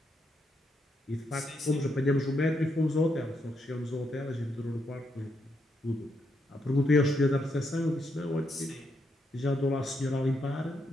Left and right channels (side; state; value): both; normal; correlation 0.79